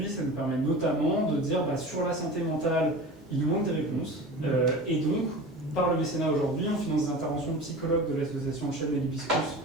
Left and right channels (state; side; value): normal; both; correlation 0.34